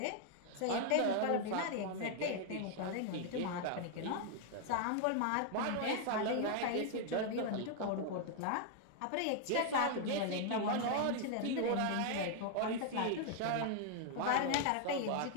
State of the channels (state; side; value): different; both; correlation 0.00